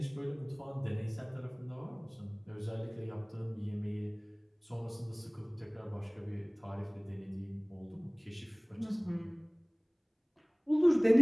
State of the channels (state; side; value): identical; both; correlation 1.00